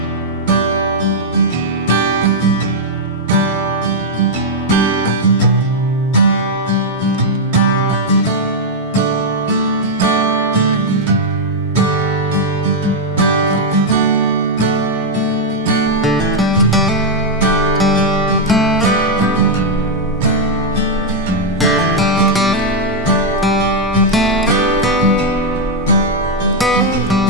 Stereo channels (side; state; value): both; normal; correlation -0.02